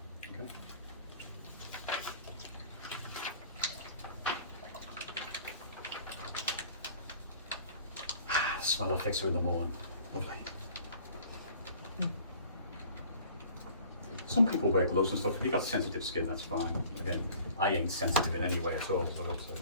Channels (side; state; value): both; inverted; correlation -0.50